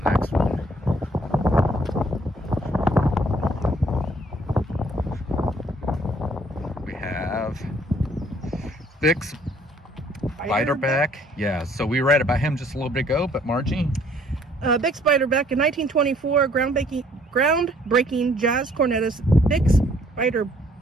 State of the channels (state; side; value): normal; both; correlation 0.61